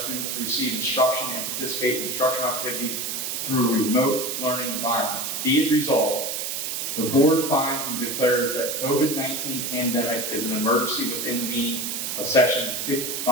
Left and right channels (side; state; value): right; noise; hiss, 3 dB below the sound